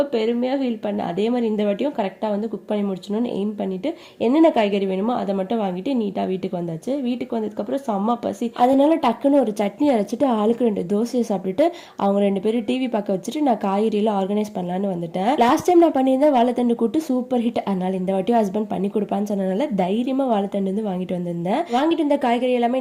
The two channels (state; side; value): identical; both; correlation 1.00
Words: பெருமையாக ஃபீல் பண்ணேன். அதே மாதிரி இந்த வாட்டியும் கரெக்டாக வந்து குக் பண்ணி முடிச்சணும்னு எய்ம் பண்ணிவிட்டு என்னென்ன காய்கறி வேணுமோ அதை மட்டும் வாங்கிட்டு நீட்டாக வீட்டுக்கு வந்தாச்சு. வீட்டுக்கு வந்ததுக்கப்புறம் செம்ம பசி, அதனால டக்குன்னு ஒரு சட்னி அரைச்சிட்டு ஆளுக்கு 2 தோசையை சாப்பிட்டுட்டு அவங்க 2 பேரும் டிவி பார்க்க வச்சுட்டு நான் காய்கறியெல்லாம் ஆர்கனைஸ் பண்ணலான்னு வந்துட்டேன். லாஸ்ட் டைம் நான் பண்ணியிருந்தேன் வாழைத்தண்டு கூட்டு சூப்பர் ஹிட். அதனால இந்த வாட்டியும் ஹஸ்பண்ட் பண்ணி கொடுப்பான்னு சொன்னனால தைரியமாக வாழைத்தண்டு வந்து வாங்கிட்டு வந்திருந்தேன். வாங்கிட்டு வந்த காய்கறி எல்லாமே